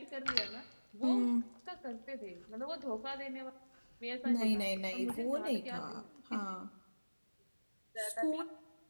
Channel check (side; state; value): both; inverted; correlation -1.00